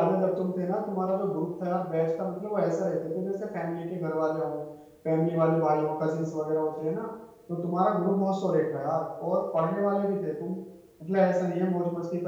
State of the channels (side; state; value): both; identical; correlation 1.00